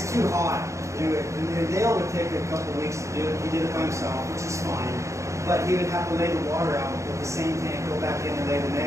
too hot to do it. And Dale would take a couple weeks to do it. He did it by himself, which is fine. But he would have to lay the water out with the same tank, go back in and lay the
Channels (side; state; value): left; late; 0.15 ms